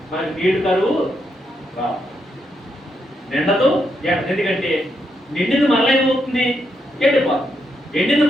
మనకి నీళ్లు కరువు రావు. నిండదు. ఎందుకంటే నిండింది మరలా ఏమవుతుంది? ఎండిపోతుంది. ఎండింది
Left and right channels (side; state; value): both; normal; correlation 0.80